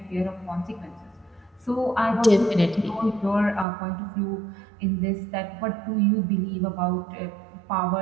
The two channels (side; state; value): left; drops out; at 3.7 s